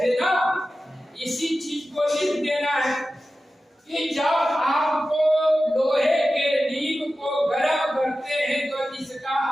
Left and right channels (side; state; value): both; normal; correlation 0.94